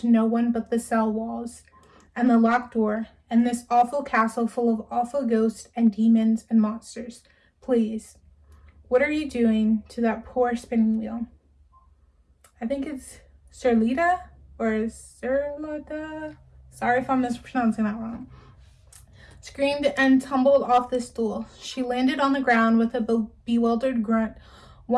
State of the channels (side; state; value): both; identical; correlation 1.00